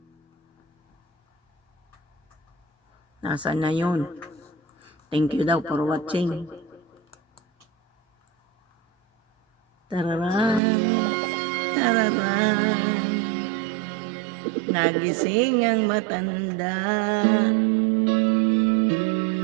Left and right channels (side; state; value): left; drops out; at 10.6 s